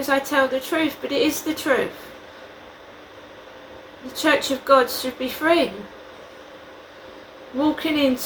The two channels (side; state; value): both; identical; correlation 1.00